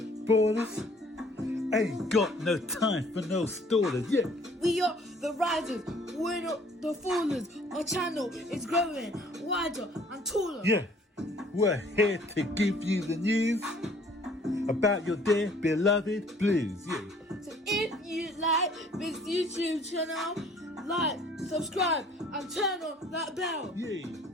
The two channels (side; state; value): both; normal; correlation 0.56